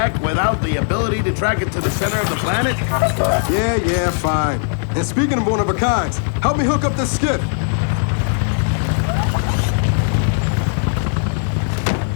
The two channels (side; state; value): right; silent; digital silence